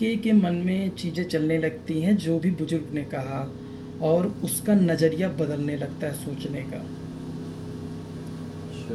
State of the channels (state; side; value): identical; both; correlation 1.00